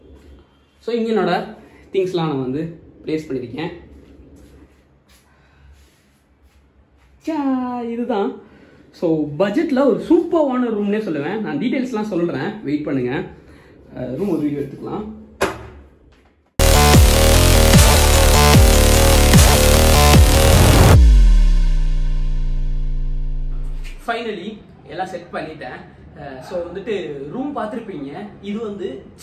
ஸோ இங்கே என்னோட திங்ஸ்லாம் நான் வந்து ப்ளேஸ் பண்ணியிருக்கேன். இதுதான். ஸோ பட்ஜெட்டில் ஒரு சூப்பர்வான ரூம்னே சொல்லுவேன். நான் டீட்டெயில்ஸ்லாம் சொல்கிறேன், வெயிட் பண்ணுங்கள். ரூம் ஒரு வீடியோ எடுத்துக்கலாம். ஃபைனலி எல்லாம் செட் பண்ணிட்டேன். ஸோ வந்துட்டு ரூம் பார்த்துருப்பீங்க. இது வந்து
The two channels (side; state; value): both; identical; correlation 1.00